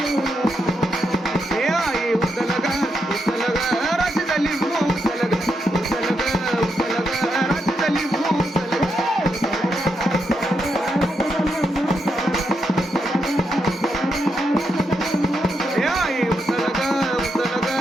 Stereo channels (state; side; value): normal; both; correlation 0.82